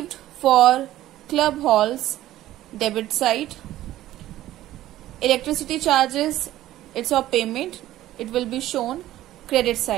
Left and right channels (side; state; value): left; quieter; 14.3 dB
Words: for club halls, debit side. Electricity charges, it's a payment, it will be shown credit